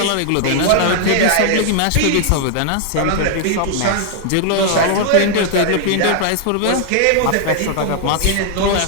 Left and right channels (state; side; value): different; both; correlation 0.00